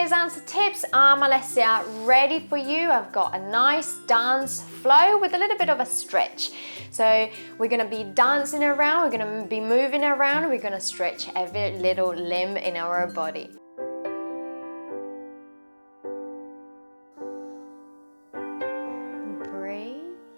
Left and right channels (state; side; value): inverted; both; correlation -1.00